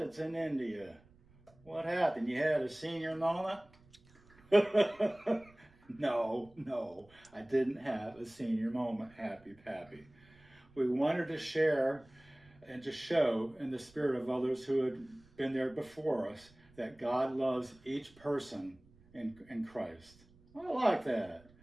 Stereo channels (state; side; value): noise; right; rumble, 28 dB below the sound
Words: in India. What happened? You had a senior moment? No, I didn't have a senior moment, Happy Pappy. We wanted to share and to show in the spirit of others who had been there before us that God loves each person in Christ. I like that.